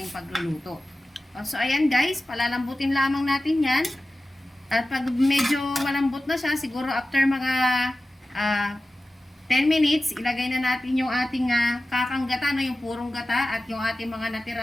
pagluluto. So, ayan guys, palalambutin lamang natin yan. At pag medyo malambot na siya, siguro after mga 10 minutes, ilagay na natin yung ating kakanggata, no? Yung purong gata at yung ating mga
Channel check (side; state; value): both; normal; correlation 0.95